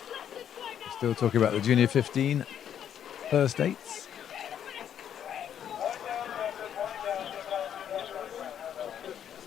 Still talking about the Junior 15 first eights.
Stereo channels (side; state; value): right; quieter; 9.4 dB